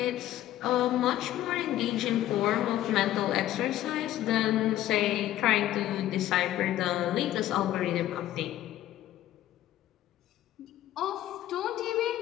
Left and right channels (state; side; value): quieter; right; 13.5 dB